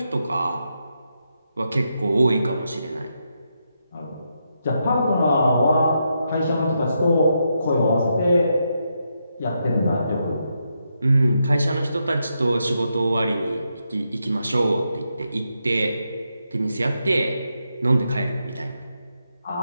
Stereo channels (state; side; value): inverted; both; correlation -0.82